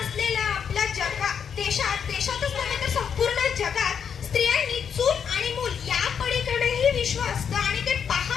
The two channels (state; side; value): quieter; right; 7.4 dB